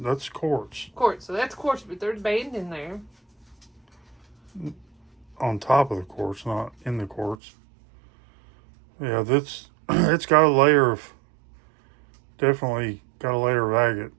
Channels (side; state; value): left; drops out; at 7.4 s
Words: quartz. Quartz. So that's quartz, but there's banding there. On top of the quartz, not in the quartz. Yeah, it's got a layer of, definitely got a layer of agate